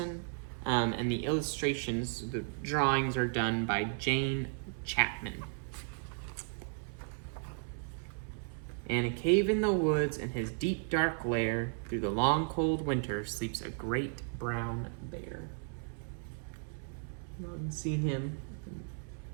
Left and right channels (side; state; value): left; silent; 55 dB below the other